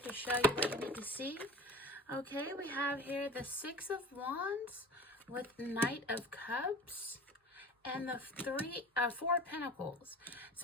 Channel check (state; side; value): normal; both; correlation 0.38